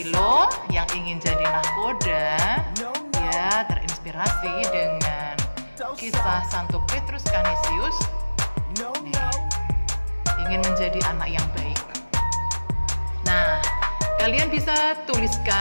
yang ingin jadi nahkoda, dia terinspirasi dengan kisah Santo Petrus Canisius. Ingin menjadi anak yang baik. Nah, kalian bisa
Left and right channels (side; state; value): both; inverted; correlation -1.00